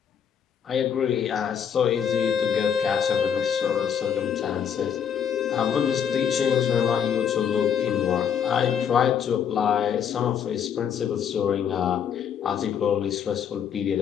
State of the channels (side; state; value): right; quieter; 8.1 dB